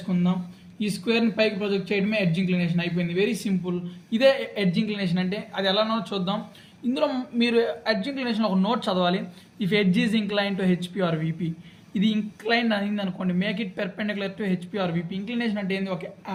ఈ స్క్వేర్ని పైకి ప్రొజెక్ట్ చేయడమే ఎడ్జ్ ఇంక్లినేషన్ అయిపోయింది. Very simple. ఇదే ఎడ్జ్ ఇంక్లినేషన్ అంటే. అది ఎలానో చూద్దాం. ఇందులో మీరు ఎడ్జ్ ఇంక్లినేషన్ ఒక నోట్ చదవాలి. If edge is incline to HP or VP, ఇది ఇంక్లైన్ అయింది అనుకోండి, make it perpendicular to HP or VP. Inclination అంటే ఏంది?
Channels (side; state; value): both; identical; correlation 1.00